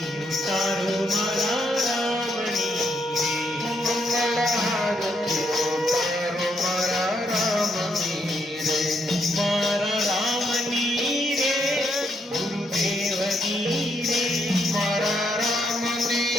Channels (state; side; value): normal; both; correlation 0.76